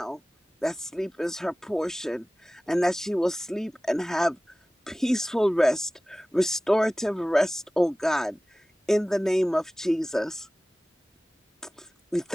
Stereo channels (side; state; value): both; normal; correlation 0.98